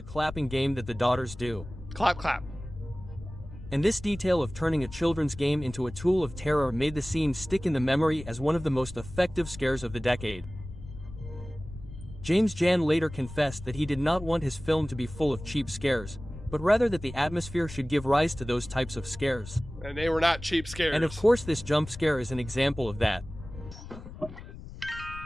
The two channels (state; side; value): noise; left; rumble, 14 dB below the sound